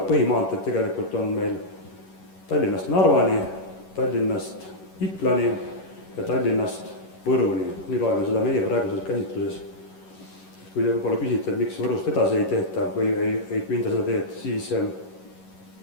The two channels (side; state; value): right; late; 11 ms